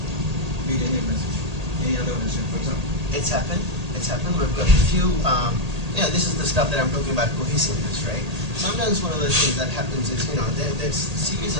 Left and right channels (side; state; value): left; late; 1.8 ms